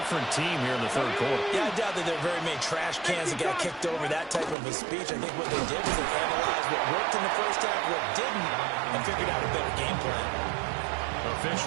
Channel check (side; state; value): left; drops out; at 4.5 s